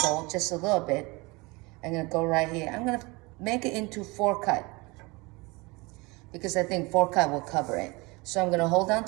just a little bit. I'm gonna go right here. I'm gonna make it into 4 cut because I think 4 cut will cover it. So I'm gonna hold on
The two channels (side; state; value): left; quieter; 25.2 dB